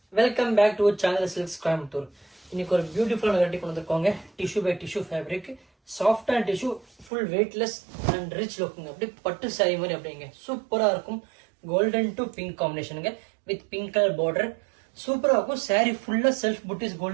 welcome back to Channel Silks Coimbatore. இன்னைக்கு ஒரு பியூட்டிஃபுல்லான வெரைட்டி கொண்டு வந்திருக்கோங்க. Tissue by tissue fabric, soft and tissue, full weightless and rich லுக்குங்க. அப்படியே பட்டு சாரி மாதிரி அப்படிங்க சூப்பராக இருக்கும். கோல்டன் டு பிங்க் காம்பினேஷனுங்க வித் பிங்க் கலர் பார்டர். சூப்பராக இருக்கும். சாரி ஃபுல்லாக செல்ஃப் புட்டிஸ்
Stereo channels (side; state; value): left; drops out; at 7.1 s